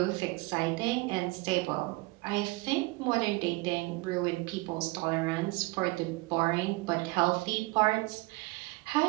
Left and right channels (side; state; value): left; quieter; 24.0 dB